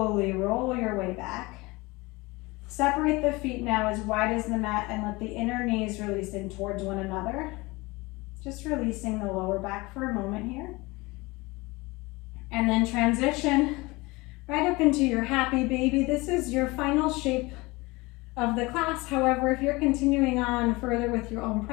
roll your way back. Separate the feet now as wide as the mat and let the inner knees release in towards one another. Just releasing the lower back for a moment here. And then transition right up into your happy baby. This is your final shape of the class. However, if you're continuing on further with your own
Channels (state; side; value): quieter; right; 23.2 dB